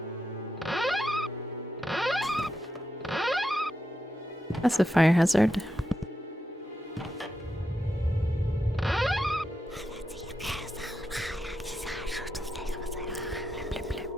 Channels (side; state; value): both; normal; correlation 0.86